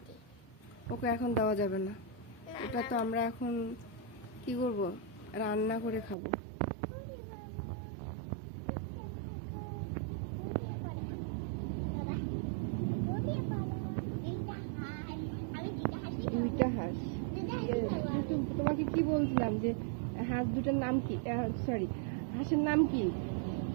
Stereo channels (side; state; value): left; drops out; at 6.2 s